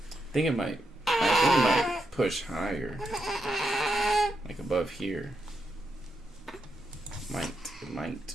think it might push higher. Like above here. It might.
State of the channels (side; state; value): both; normal; correlation 0.83